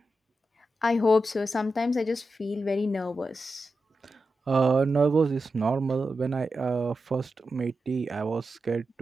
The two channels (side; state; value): both; normal; correlation 0.90